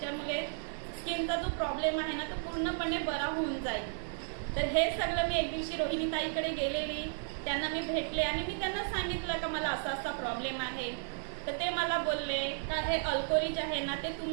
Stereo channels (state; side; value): silent; left; 55 dB below the other